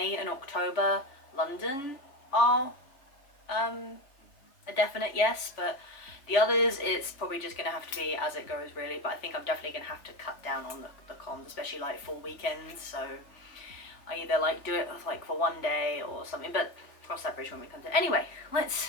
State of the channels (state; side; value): late; right; 3.5 ms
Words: and October, London are a definite yes, but the others, it's probably just going to have to be as it goes really, but I think I'm definitely going to have to cut down on the cons, especially like full weekends, so I either like do it like for one day or something, but cross that bridge when we come to it. Anyway,